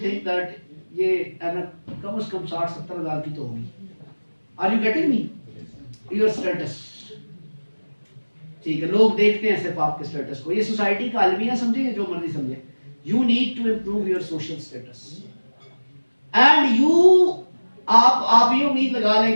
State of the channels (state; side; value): inverted; both; correlation -1.00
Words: थिंक दैट ये कम से कम 60-70 हज़ार की तो होगी। Are you getting me? Your status, ठीक है, लोग देखते हैं सिर्फ आपके स्टेटस को। ये सोसाइटी का अलमिया समझे, जो मर्जी समझे, you need to improve your social status and you आप ये उम्मीद लगा